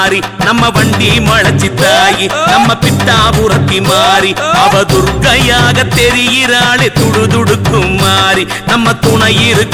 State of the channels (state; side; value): identical; both; correlation 1.00